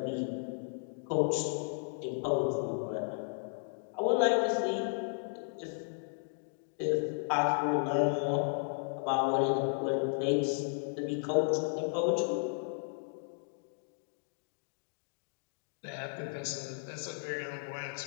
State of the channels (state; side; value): silent; right; digital silence